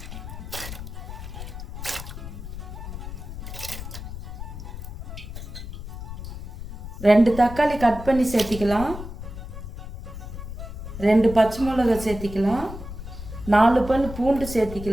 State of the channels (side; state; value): left; noise; rumble, 9 dB below the sound